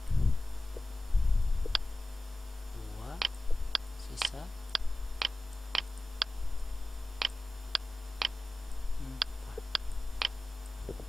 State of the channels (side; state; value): both; normal; correlation 0.95